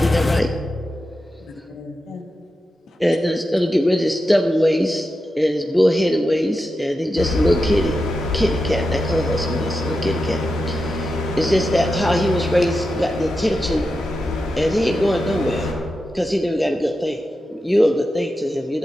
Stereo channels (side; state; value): both; normal; correlation 0.90